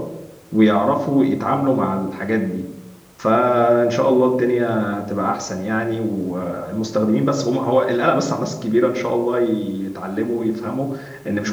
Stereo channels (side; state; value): both; identical; correlation 1.00